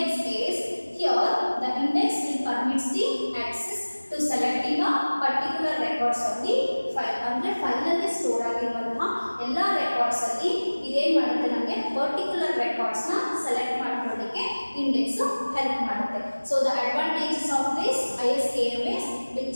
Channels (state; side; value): inverted; both; correlation -1.00